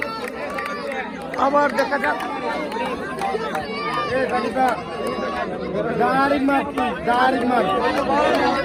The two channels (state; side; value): identical; both; correlation 1.00